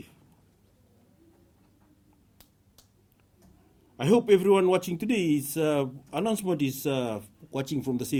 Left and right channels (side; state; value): both; identical; correlation 1.00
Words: I hope everyone watching today's announcement is watching from the